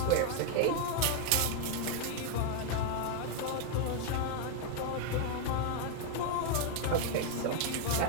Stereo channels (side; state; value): both; different; correlation 0.00